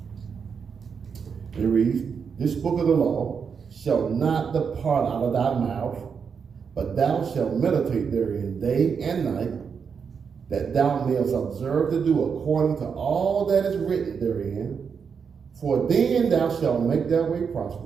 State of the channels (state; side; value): quieter; left; 6.3 dB